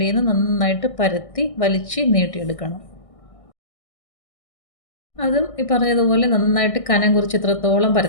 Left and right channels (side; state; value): right; late; 1.6 ms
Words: നിന്ന് നന്നായിട്ട് പരത്തി വലിച്ച് നീട്ടിയെടുക്കണം. അതും ഈ പറഞ്ഞതുപോലെ നന്നായിട്ട് കനം കുറച്ച് എത്രത്തോളം